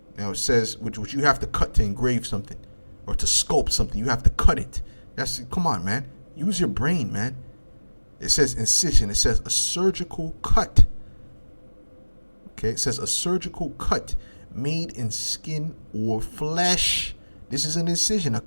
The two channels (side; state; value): both; inverted; correlation -1.00